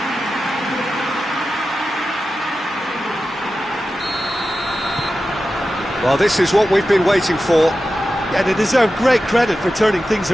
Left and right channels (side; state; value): both; normal; correlation 0.93